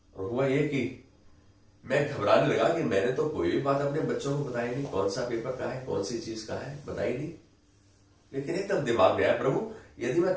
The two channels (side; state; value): both; identical; correlation 1.00